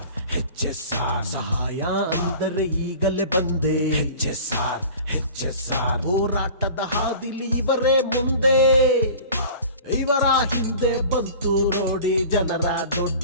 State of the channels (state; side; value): inverted; both; correlation -0.41